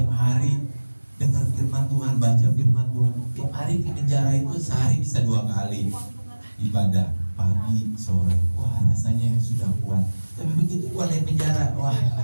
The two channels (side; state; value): both; inverted; correlation -1.00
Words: hari dengar firman Tuhan, baca firman Tuhan. Tiap hari di penjara itu sehari bisa 2 kali ibadah, pagi sore. Rasanya sudah kuat. Tapi begitu keluar dari penjara,